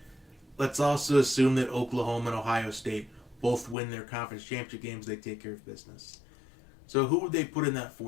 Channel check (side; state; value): right; drops out; at 3.8 s